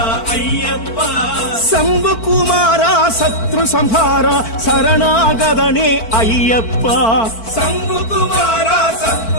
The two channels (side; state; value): right; late; 4.5 ms